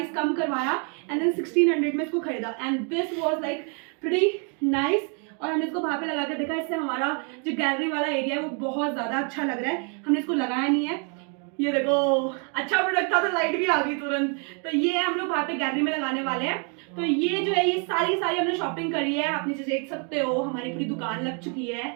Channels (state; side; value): quieter; left; 38.9 dB